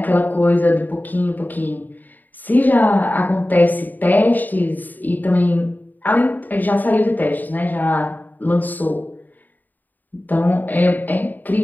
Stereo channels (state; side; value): late; right; 0.086 ms